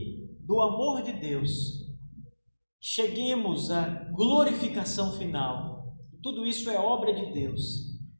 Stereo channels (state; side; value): inverted; both; correlation -1.00